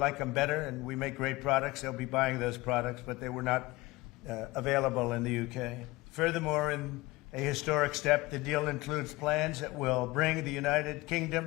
them better and we make great products, they'll be buying those products, but they were not available in the UK. Furthermore, in a historic step, the deal includes plans that will bring the United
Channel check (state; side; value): quieter; right; 21.0 dB